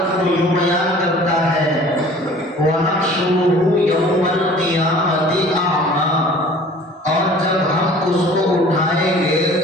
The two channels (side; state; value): both; normal; correlation 0.48